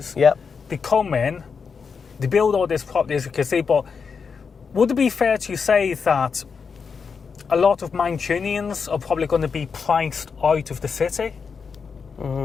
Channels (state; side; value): quieter; right; 5.7 dB